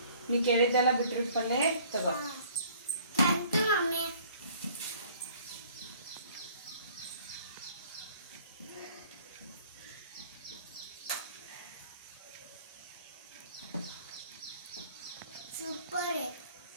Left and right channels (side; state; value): both; inverted; correlation -0.55